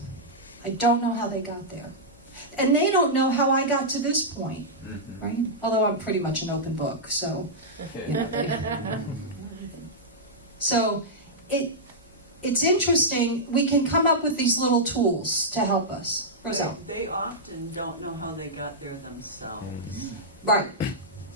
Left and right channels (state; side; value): normal; both; correlation -0.09